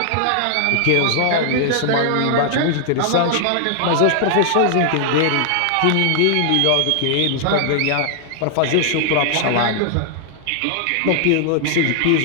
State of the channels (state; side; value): different; both; correlation 0.00